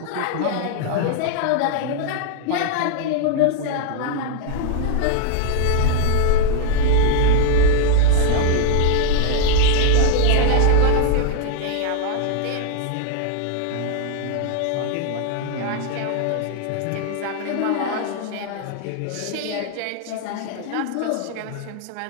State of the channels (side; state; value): both; different; correlation 0.00